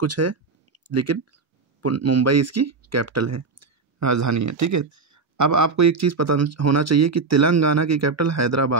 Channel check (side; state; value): left; quieter; 4.5 dB